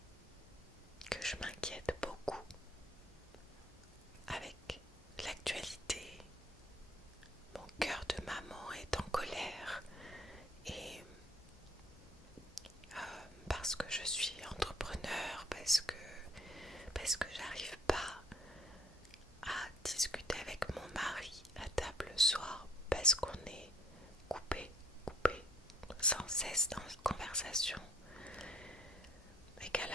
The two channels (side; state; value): both; normal; correlation 0.60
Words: cesse dans une conversation et qu'à